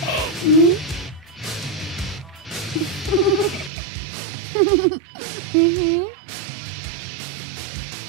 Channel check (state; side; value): drops out; left; at 3.7 s